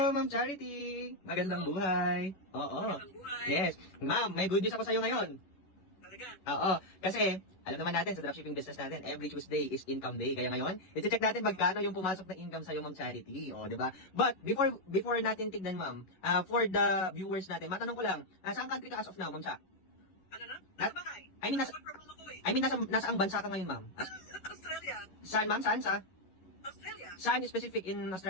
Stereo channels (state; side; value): late; right; 11 ms